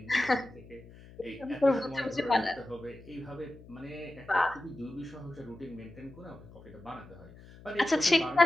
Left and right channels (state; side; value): noise; left; hum, 20 dB below the sound